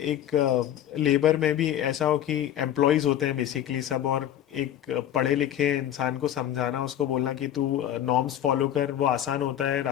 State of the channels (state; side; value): quieter; right; 11.2 dB